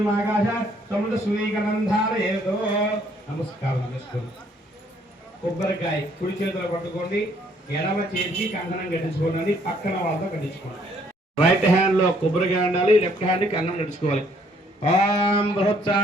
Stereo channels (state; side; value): normal; both; correlation 0.65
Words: ఆకాశ సముద్ర సూర్యగంధారయేతో. నమస్కారం చేసుకోండి. కొబ్బరికాయ కుడి చేతిలో పట్టుకోండి, ఎడమ చేతికి కంకణం కట్టించుకోండి, పక్కన వాళ్ళతో కట్టించుకోండి. రైట్ హ్యాండ్ లో కొబ్బరికాయ ఉండాలి, లెఫ్ట్ హ్యాండ్ కంకణం కట్టించుకోవాలి. ఓం